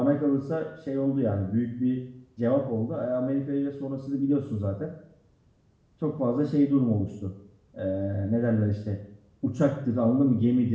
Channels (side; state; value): both; identical; correlation 1.00